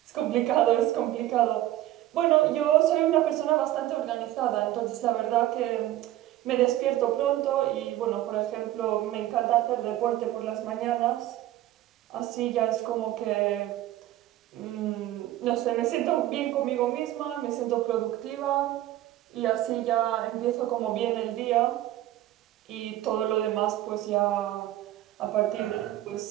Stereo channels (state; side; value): quieter; left; 14.3 dB